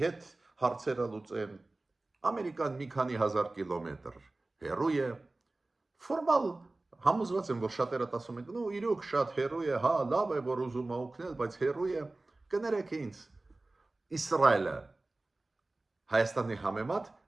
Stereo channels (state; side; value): quieter; left; 3.0 dB